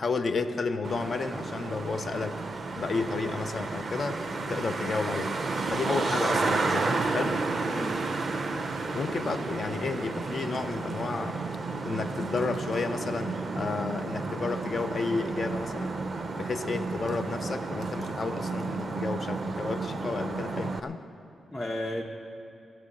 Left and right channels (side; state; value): both; normal; correlation 0.83